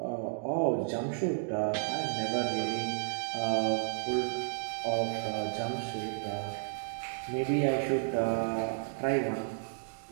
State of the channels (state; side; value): silent; left; digital silence